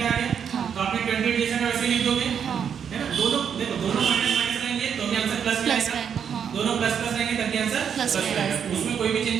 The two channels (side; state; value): left; quieter; 7.7 dB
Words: आ गया। तो आपने 28 जैसा का वैसे लिख दोगे, है ना। दोनों देखो, दोनों माइनस रहेंगे तो भी आंसर प्लस आएगा। दोनों प्लस रहेंगे तब भी आंसर प्लस आएगा। उसमें कोई भी